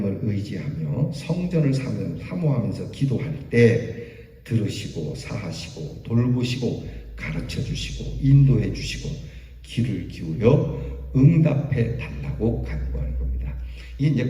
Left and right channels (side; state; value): both; identical; correlation 1.00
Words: 의지하며 성전을 사모하면서 기도할 때 들으시고 사하시고 돌보시고 가르쳐 주시고 인도해 주시고 귀를 기울여 응답해 달라고 간구하는 겁니다. 이게 이제